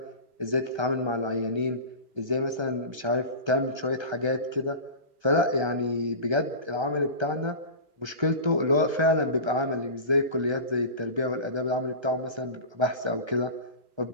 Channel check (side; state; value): left; late; 1.3 ms